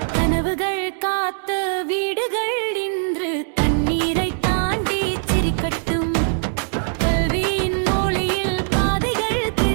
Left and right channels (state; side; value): silent; left; digital silence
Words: கனவுகள் காத்த வீடுகள் இன்று தண்ணீரை தாண்டி சிரிக்கட்டும் கல்வியின் மொழியில் பாதைகள்